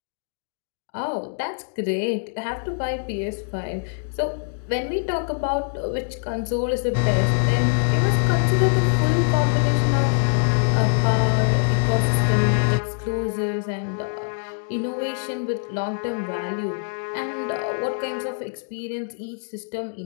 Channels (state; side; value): silent; right; digital silence